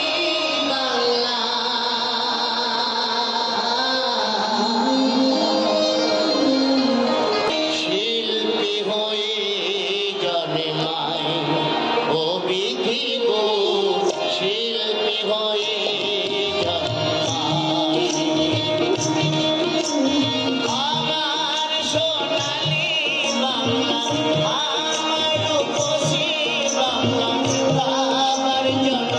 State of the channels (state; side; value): identical; both; correlation 1.00